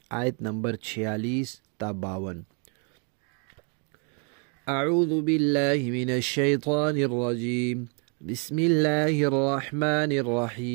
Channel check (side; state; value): left; quieter; 38.5 dB